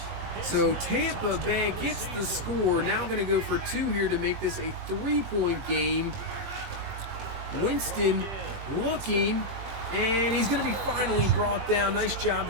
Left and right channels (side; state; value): left; late; 20 ms